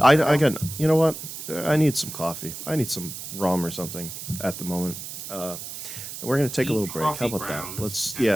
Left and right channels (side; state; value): right; noise; hiss, 9 dB below the sound